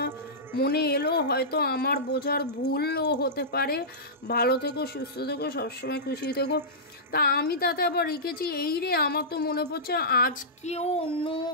মনে এলো, হয়তো আমার বোঝার ভুলও হতে পারে। ভালো থেকো, সুস্থ থেকো, সবসময় খুশি থেকো। তা আমি তাতে আবার লিখেছি, এই রে, আমার তো মনে পড়ছে আজকেও অন্য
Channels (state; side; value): normal; both; correlation -0.17